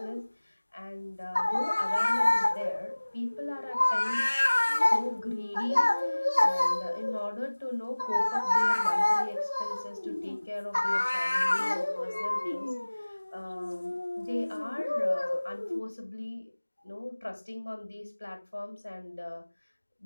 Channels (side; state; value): both; inverted; correlation -1.00